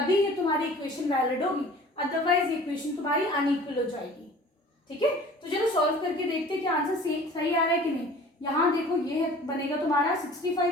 ये तुम्हारी इक्वेशन वैलिड होगी, अदरवाइज इक्वेशन तुम्हारी अनइक्वल हो जाएगी। ठीक है, तो चलो सॉल्व करके देखते हैं कि आंसर सही आ रहा है कि नहीं। यहाँ देखो ये बनेगा तुम्हारा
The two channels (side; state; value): both; normal; correlation 0.46